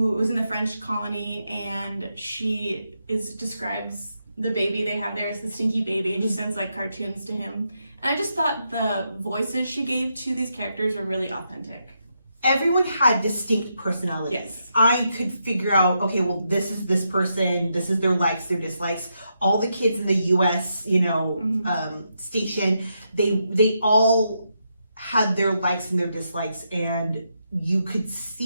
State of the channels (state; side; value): inverted; both; correlation -0.82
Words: was in the French colony, and she describes the baby they have there as the stinky baby, and she sends like cartoons to him. And I just thought the voices she gave to these characters were really authentic. Everyone had distinct personalities. Yes. I could figure out, okay, well, this is this person, this is their likes, their dislikes. All the kids in the U.S., station, they all had their likes and their dislikes, and you could